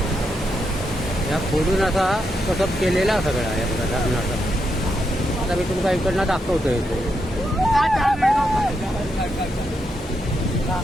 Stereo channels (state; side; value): normal; both; correlation 0.82